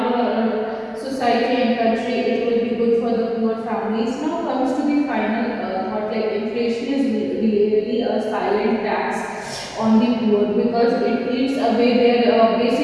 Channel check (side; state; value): both; identical; correlation 1.00